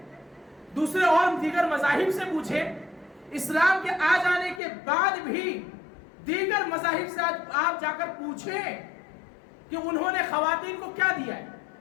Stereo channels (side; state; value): right; drops out; at 4.6 s